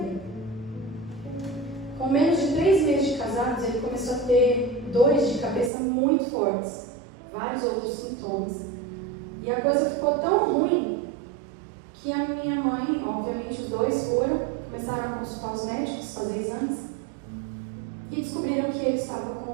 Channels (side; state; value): left; drops out; at 5.7 s